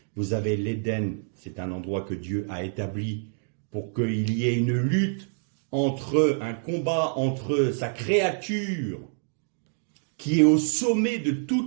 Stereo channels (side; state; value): left; silent; digital silence